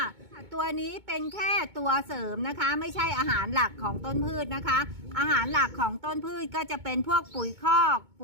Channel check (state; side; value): late; left; 2.2 ms